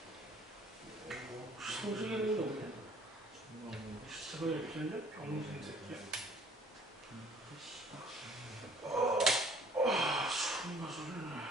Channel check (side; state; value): both; normal; correlation 0.56